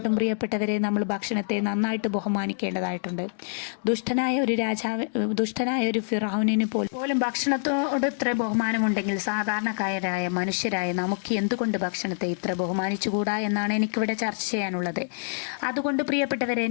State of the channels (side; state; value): right; silent; digital silence